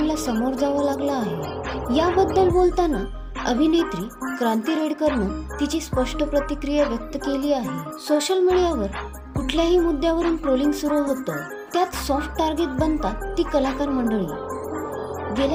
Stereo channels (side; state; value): both; identical; correlation 1.00